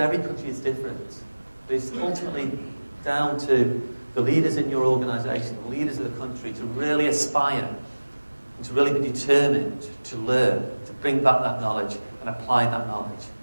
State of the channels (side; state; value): both; inverted; correlation -1.00